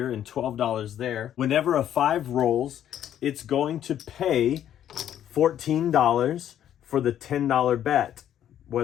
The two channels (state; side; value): quieter; right; 10.7 dB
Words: and $12 there, whenever a 5 rolls, it's going to pay $14 for the $10 bet,